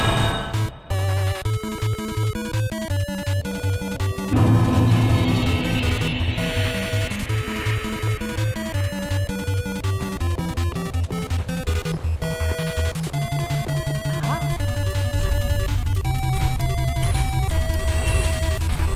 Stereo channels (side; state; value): both; identical; correlation 1.00